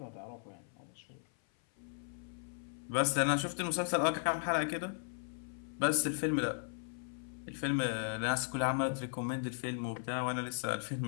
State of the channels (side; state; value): right; silent; 53 dB below the other